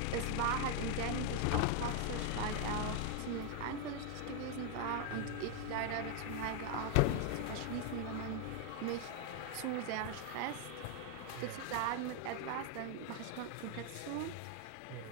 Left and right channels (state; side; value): different; both; correlation 0.00